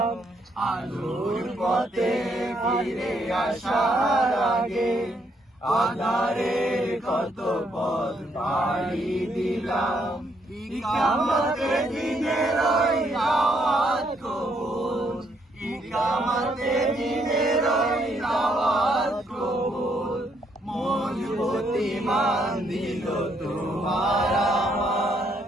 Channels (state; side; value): normal; both; correlation 0.73